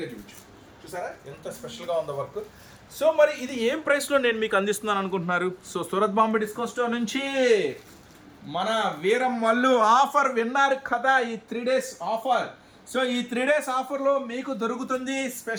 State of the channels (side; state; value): both; identical; correlation 1.00